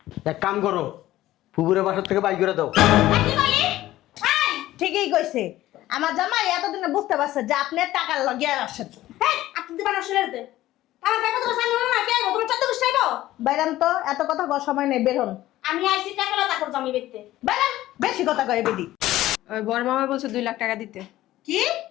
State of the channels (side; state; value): right; quieter; 15.2 dB